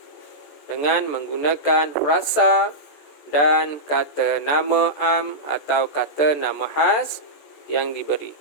dengan menggunakan frasa dan kata nama am atau kata nama khas yang diberi.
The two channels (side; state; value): right; late; 14 ms